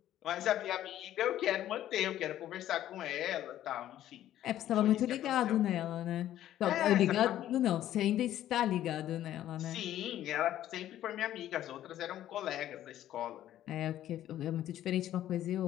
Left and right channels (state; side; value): quieter; right; 12.4 dB